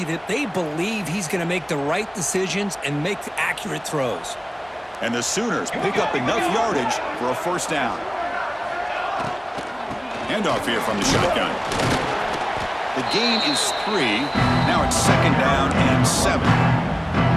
that they believe he's going to make the right decisions and make accurate throws. And the Sooners pick up enough yardage for a 1st down. Handoff here from the shotgun. The gain is 3. Now it's 2nd down and 7.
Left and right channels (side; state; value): both; identical; correlation 1.00